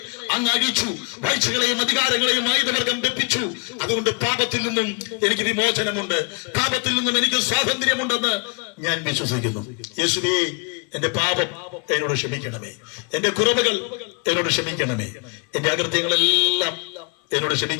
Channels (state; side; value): quieter; right; 31.1 dB